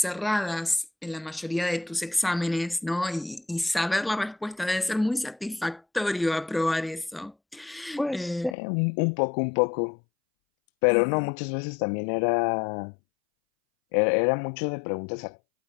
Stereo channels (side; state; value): right; drops out; at 8.6 s